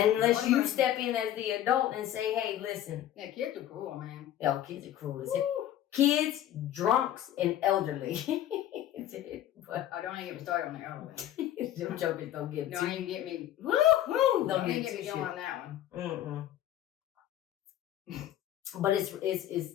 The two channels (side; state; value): right; quieter; 12.2 dB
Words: you step in as the adult and say, hey, listen. Yeah, kids are cruel, man. Yeah, kids are cruel as hell. Kids, drunks, and elderly. But I don't even get me started on the elderly. Them jokers don't get me. Don't even get me. Woo-hoo! Don't even get me going on that one. But